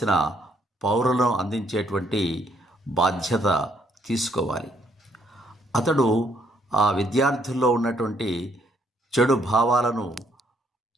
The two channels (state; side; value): normal; both; correlation 0.69